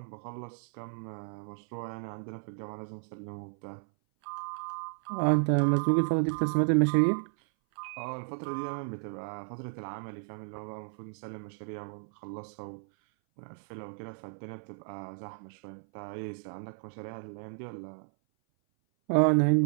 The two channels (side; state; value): left; silent; 56 dB below the other